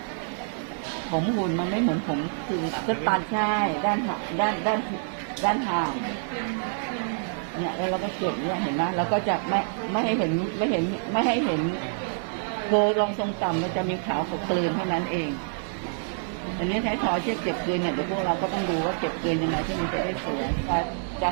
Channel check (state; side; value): silent; left; digital silence